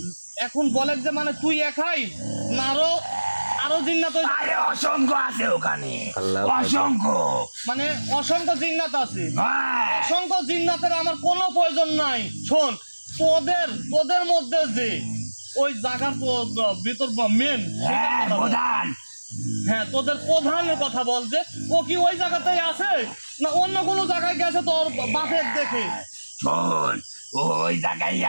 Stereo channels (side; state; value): both; inverted; correlation -1.00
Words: এখন বলে যে মানে তুই একাই না, আরো জিন্নাত আরে অসংখ্য আছে ওখানে, আল্লাহু অসংখ্য। মানে অসংখ্য জিন্নাত আছে। হ্যাঁ, অসংখ্য জিন্নাতের আমার কোনো প্রয়োজন নাই। শোন, তোদের মধ্যে যে ওই জায়গার ভিতর মেন, হ্যাঁ, প্রধান। হ্যাঁ, তোদের প্রধানের কথা বল, যে ও কি ওই জায়গাতেই আছে না অন্য কোনো জায়গায় গেছে তোর বাপের দেখে? শোন, ও ওই জায়গায়